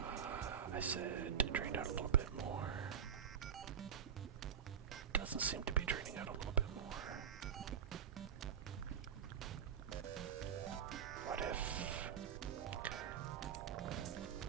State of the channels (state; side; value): quieter; left; 8.4 dB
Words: I said drain out a little bit more. Doesn't seem to be draining out a little bit more. What if... Okay.